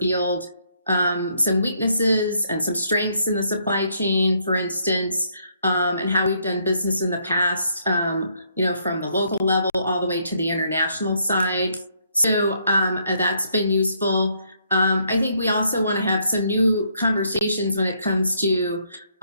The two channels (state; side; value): inverted; both; correlation -0.71